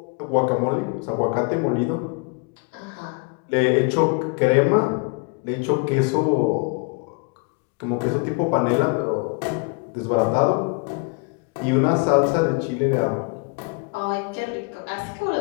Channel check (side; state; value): right; quieter; 33.4 dB